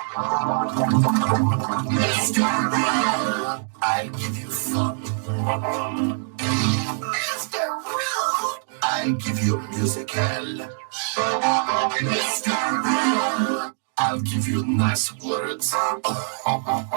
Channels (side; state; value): left; silent; digital silence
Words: Mr. Rude. I'll give you fun. Mr. Rude. I'll give you musical. Mr. Rude. I'll give you nice words.